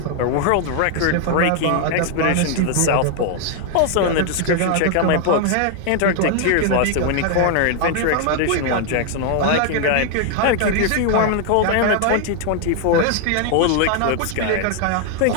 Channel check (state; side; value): different; both; correlation 0.00